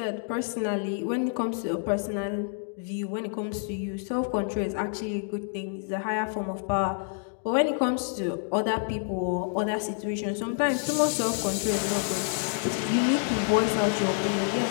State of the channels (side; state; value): right; silent; 59 dB below the other